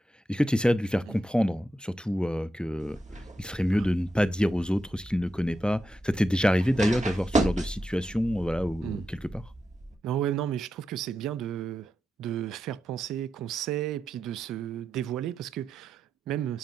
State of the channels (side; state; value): both; normal; correlation 0.87